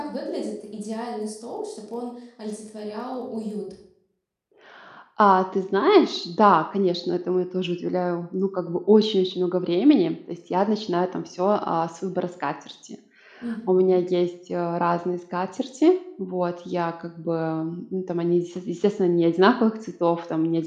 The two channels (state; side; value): identical; both; correlation 1.00